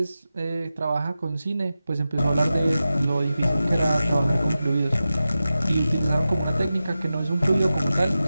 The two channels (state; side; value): inverted; both; correlation -0.93